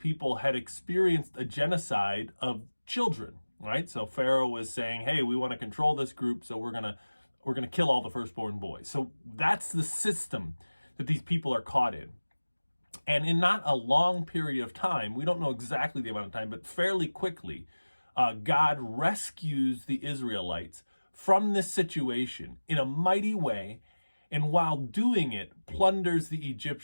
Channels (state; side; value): inverted; both; correlation -1.00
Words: had experienced a genocide of children, right? So Pharaoh was saying, hey, we want to control this group, so we're gonna kill all the firstborn boys. So that's the system that these people are caught in. And in not a long period of time, we don't know exactly the amount of time, but fairly quickly, God rescues the Israelites from this situation in a mighty way, and while doing it, plunders the